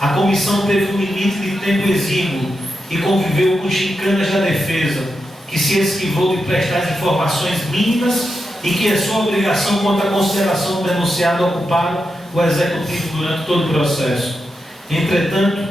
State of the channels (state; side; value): normal; both; correlation 0.87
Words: comissão teve um limite de tempo exíguo e conviveu com chicanas da defesa, que se esquivou de prestar as informações mínimas e que é sua obrigação quanto à consideração do denunciado ocuparam o executivo durante todo o processo. Entretanto,